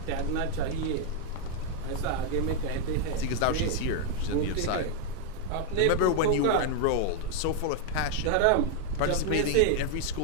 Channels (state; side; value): different; both; correlation 0.00